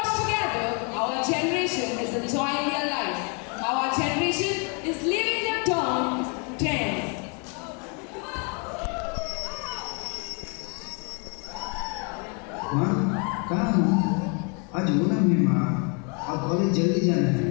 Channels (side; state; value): right; quieter; 36.2 dB